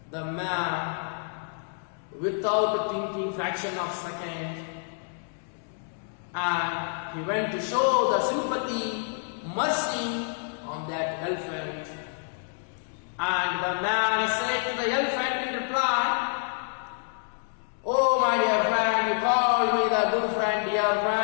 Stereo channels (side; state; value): right; silent; 59 dB below the other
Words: without thinking fraction of second, and he went to show the sympathy, mercy on that elephant. And the man said to the elephant in reply, oh my dear friend, you called me the good friend, dear